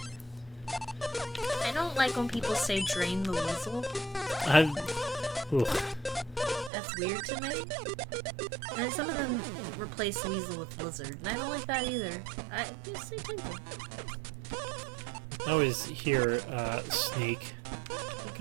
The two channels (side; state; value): left; drops out; at 6.7 s